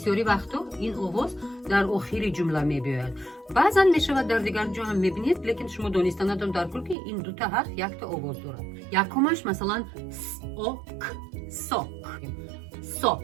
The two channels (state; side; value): drops out; left; at 7.0 s